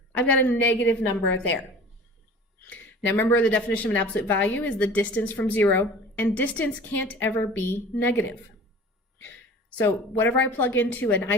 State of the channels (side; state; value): both; normal; correlation 0.42